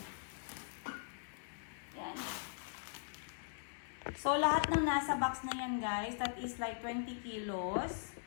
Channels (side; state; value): right; silent; 51 dB below the other